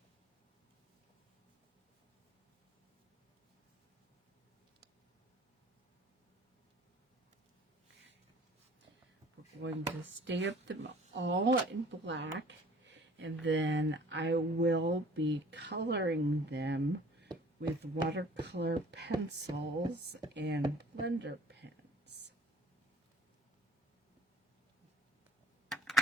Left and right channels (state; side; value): normal; both; correlation 0.51